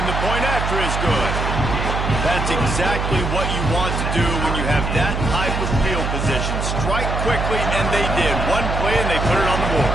the point after is good. That's exactly what you want to do when you have that type of field position. Strike quickly, and they did. One play, and they put it on the board.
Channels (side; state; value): right; noise; hum, 2 dB below the sound